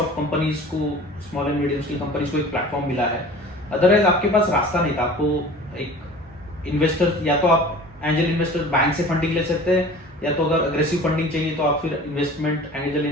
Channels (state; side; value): normal; both; correlation 0.42